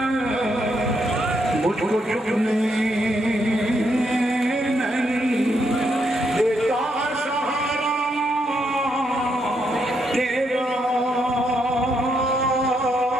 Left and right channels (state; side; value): normal; both; correlation 0.78